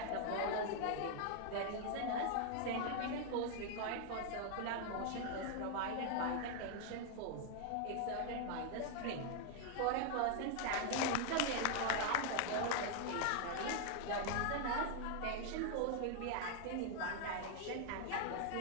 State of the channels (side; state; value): both; different; correlation 0.00